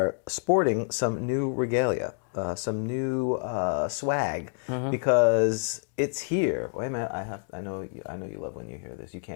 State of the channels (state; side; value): silent; right; digital silence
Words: sporting some new regalia, some new swag, because it's here. Wait a minute. I know you love when you hear this. You